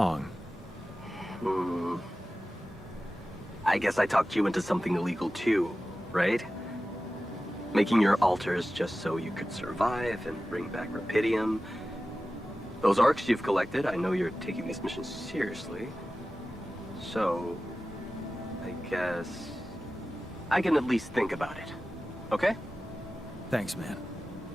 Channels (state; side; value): normal; both; correlation 0.95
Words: I guess I talked you into something illegal too, right? Making your altars just so you could survive and bring back Rapidium. Those arcs you've collected, I know you're taking this mission seriously. So, I guess I can at least think about it, okay? Thanks, man.